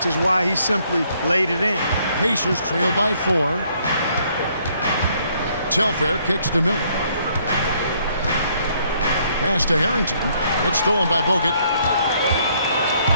is why he simply laid it in. Pacers trail by 4. Telfair kicks to Miller. Pass to Harrington. It's stolen by Bogut.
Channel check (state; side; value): inverted; both; correlation -0.67